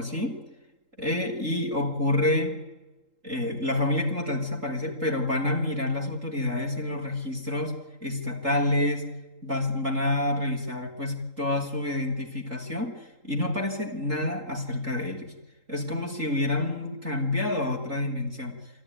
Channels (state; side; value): late; left; 3.8 ms